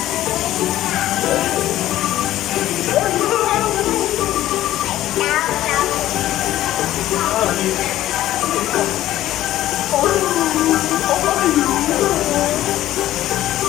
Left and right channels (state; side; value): quieter; right; 14.1 dB